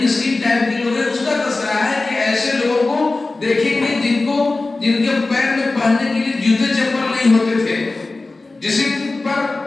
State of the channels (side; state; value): right; quieter; 3.4 dB